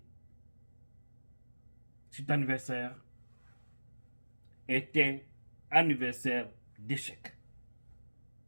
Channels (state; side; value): inverted; both; correlation -1.00